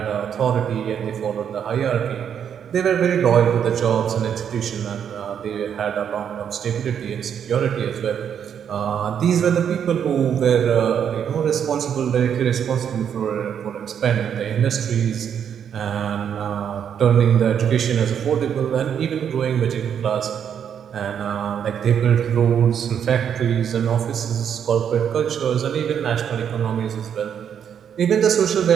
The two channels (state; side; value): quieter; left; 8.3 dB